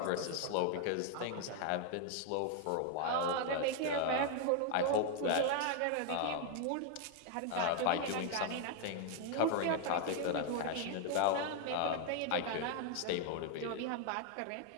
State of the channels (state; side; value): different; both; correlation 0.01